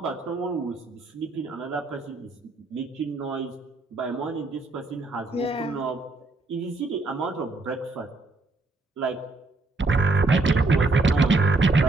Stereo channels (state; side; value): quieter; left; 3.1 dB